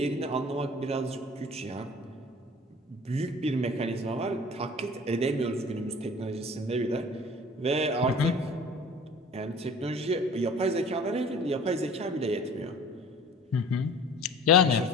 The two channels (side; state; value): both; normal; correlation 0.45